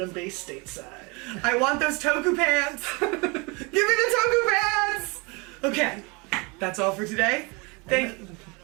stateside. I want those Toku pants! Give me the Toku pants! Okay, that's all for today. Thank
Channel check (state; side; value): quieter; left; 29.0 dB